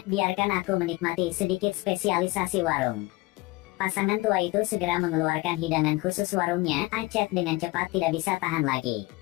biarkan aku menikmati sedikit spesialisasi warung. Pasangan tua itu segera mengeluarkan hidangan khusus warungnya, Acet dengan cepat tidak bisa tahan lagi.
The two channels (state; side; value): quieter; right; 21.7 dB